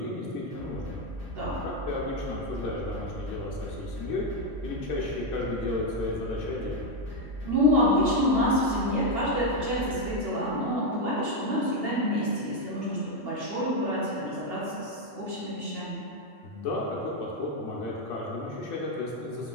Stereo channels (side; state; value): both; normal; correlation 0.04